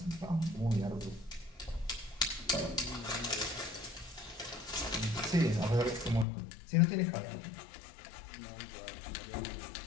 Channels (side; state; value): right; drops out; at 6.2 s